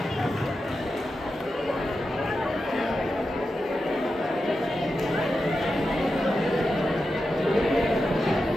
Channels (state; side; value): normal; both; correlation 0.89